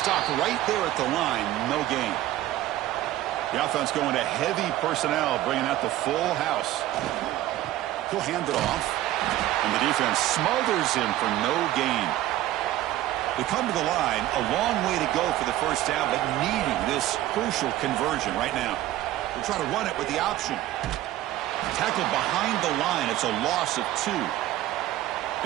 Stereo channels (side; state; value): left; quieter; 14.5 dB